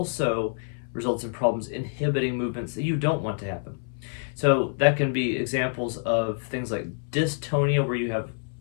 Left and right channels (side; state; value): right; silent; 60 dB below the other